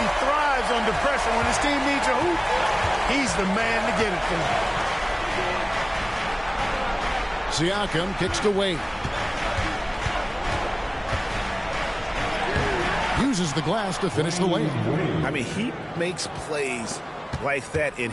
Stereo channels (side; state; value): both; identical; correlation 1.00